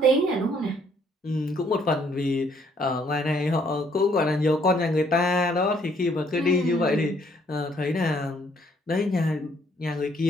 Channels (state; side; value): normal; both; correlation 0.66